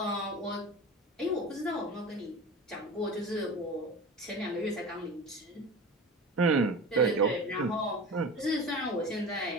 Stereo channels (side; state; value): both; normal; correlation 0.32